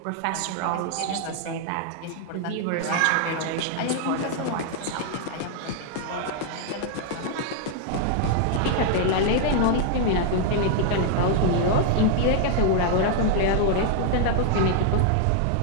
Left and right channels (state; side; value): different; both; correlation 0.00